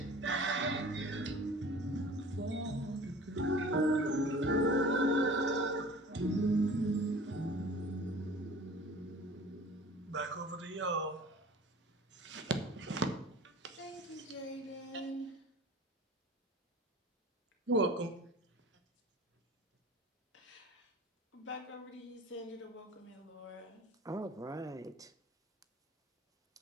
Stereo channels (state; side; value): normal; both; correlation 0.43